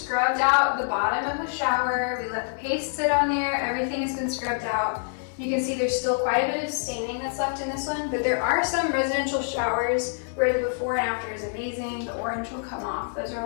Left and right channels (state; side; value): silent; right; digital silence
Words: out the bottom of the shower, we let the paste sit on there, everything has been scrubbed out. You can see there's still quite a bit of staining that's left in this one, but there are some residential showers where the before and after is amazing. The orange will come off. Those are a